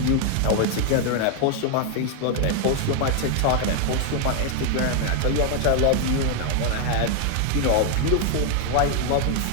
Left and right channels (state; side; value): different; both; correlation 0.00